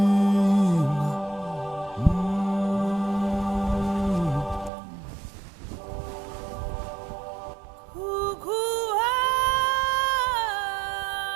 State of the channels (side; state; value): left; drops out; at 4.7 s